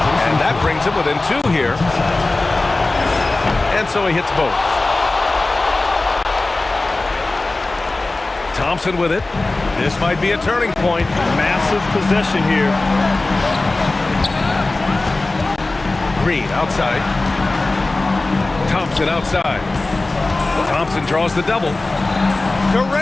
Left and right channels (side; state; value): right; quieter; 3.1 dB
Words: and that brings him within 2 here. And so he hits both. Thompson with it. This might be a turning point. Massive possession here. Green outside. Thompson outside. Thompson draws the double.